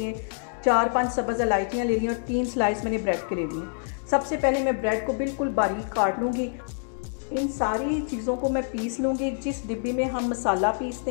4-5 सब्ज़ इलायचियाँ ले ली और 3 स्लाइस मैंने ब्रेड के ले लिए। सबसे पहले मैं ब्रेड को बिल्कुल बारीक काट लूँगी। इन सारी चीज़ों को मैं पीस लूँगी। जिस डिब्बी में हम मसाला पीसते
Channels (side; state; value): right; silent; digital silence